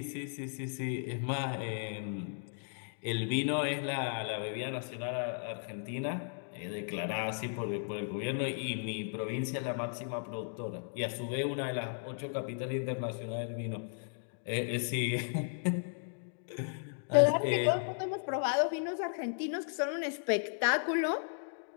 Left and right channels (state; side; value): silent; right; digital silence